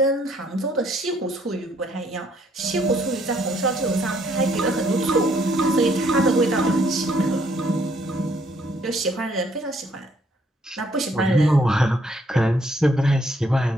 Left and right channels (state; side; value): normal; both; correlation 0.68